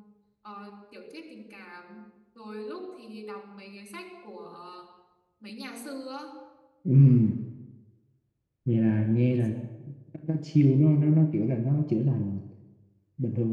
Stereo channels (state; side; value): identical; both; correlation 1.00